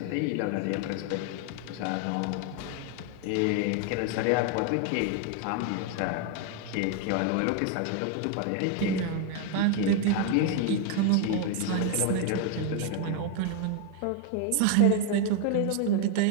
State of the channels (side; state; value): both; different; correlation 0.00